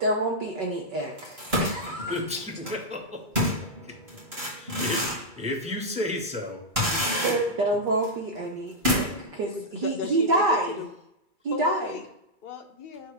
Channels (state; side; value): late; left; 2.3 ms